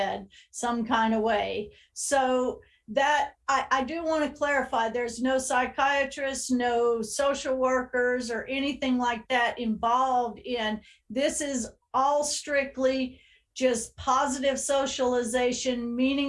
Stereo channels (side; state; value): both; identical; correlation 1.00